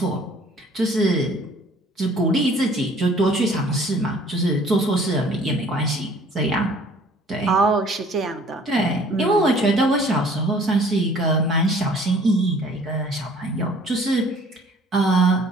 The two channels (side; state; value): both; normal; correlation 0.54